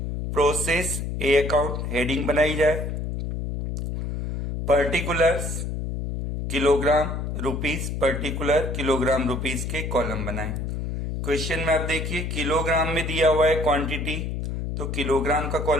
प्रोसेस ए अकाउंट हेडिंग बनाई जाए। Particulars kilogram rupees, particular kilogram rupees के कॉलम बनाएं। क्वेश्चन में आप देखिए किलोग्राम में दिया हुआ है क्वांटिटी, तो किलोग्राम का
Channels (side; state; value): left; noise; hum, 3 dB below the sound